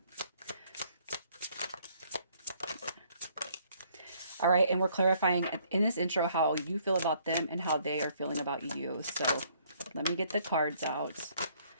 All right, and we're clarifying in this intro how you feel about them and how they are feeling about you. So let me get the cards out.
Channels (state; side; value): inverted; both; correlation -0.64